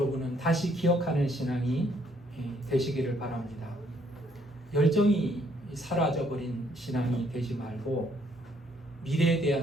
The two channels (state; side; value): normal; both; correlation 0.68